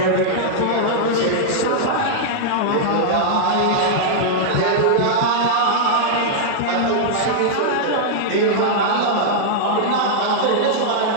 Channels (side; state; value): both; different; correlation -0.02